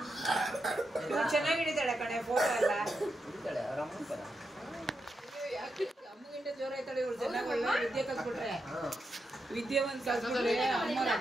ಚೆನ್ನಾಗಿಡಿತಾಳೆ ಕಣೆ ಫೋಟೋ ಎಲ್ಲ. ಅಮ್ಮಗಿಂತ ಜೋರ ಆಯ್ತಾಳೆ ಇವಳು. ಚೆನ್ನಾಗಿ ಒಳ್ಳೆ ವಿದ್ಯೆ ಕಲ್ಸ್ಬಿಟ್ರೆ, ವಿದ್ಯಾವಂತ ಕಲ್ಸ್ಬಿಟ್ರೆ ಅಮ್ಮನ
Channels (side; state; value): both; normal; correlation 0.85